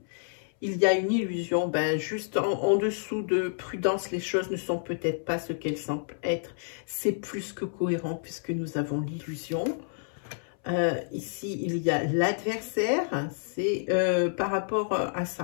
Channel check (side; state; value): right; silent; 59 dB below the other